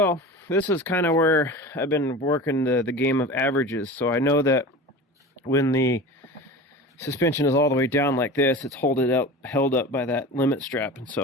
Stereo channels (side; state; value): both; normal; correlation 0.33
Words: this is kind of where I've been working the game of averages. So I know that when the suspension is all the way down like this, it's held up by that limit strap, and